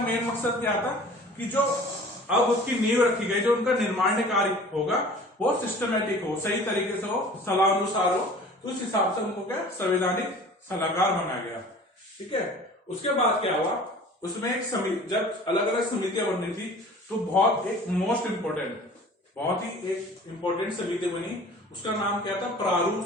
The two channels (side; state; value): both; normal; correlation 0.45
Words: मकसद क्या था कि जो अब उसकी नींव रखी गई, जो उनका निर्माण कार्य होगा वो सिस्टमेटिक हो, सही तरीके से हो, सलाह अनुसार हो। तो उस हिसाब से उनको क्या संवैधानिक सलाहकार बनाया गया। ठीक है, उसके बाद क्या हुआ, उसमें एक समिति, जब अलग अलग समितियां बननी थी तो बहुत एक मोस्ट इंपोर्टेंट, बहुत ही एक इंपोर्टेंट समिति बनी। उसका नाम क्या था, प्रारूप